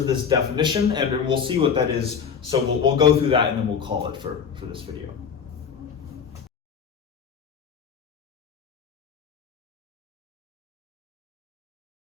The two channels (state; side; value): quieter; right; 6.8 dB